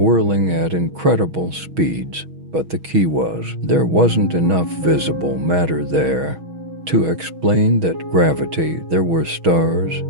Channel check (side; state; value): left; late; 6.3 ms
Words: at incredible speeds, but the key was there wasn't enough visible matter there to explain that gravity. There were stars,